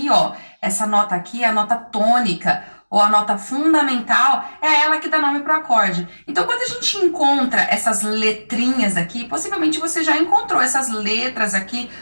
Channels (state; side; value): inverted; both; correlation -1.00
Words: ó, essa nota aqui é a nota tônica, ou a nota fundamental, é ela que dá nome pro acorde. Então, quando a gente encontra essas letrinhas aqui, possivelmente você já encontrou essas letras aqui